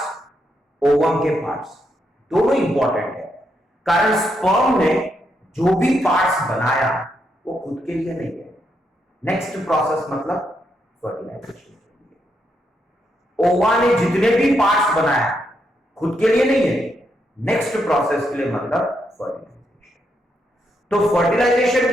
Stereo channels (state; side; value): normal; both; correlation 0.80